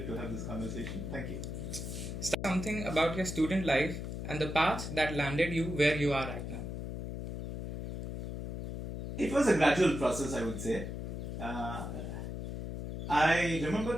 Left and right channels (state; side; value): noise; left; hum, 6 dB below the sound